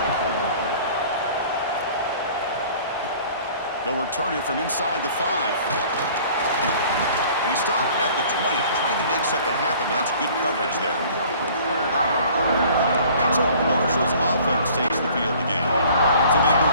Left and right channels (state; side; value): inverted; both; correlation -0.50